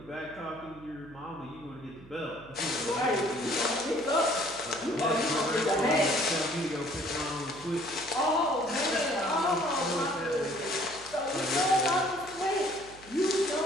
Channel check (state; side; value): noise; right; hum, 22 dB below the sound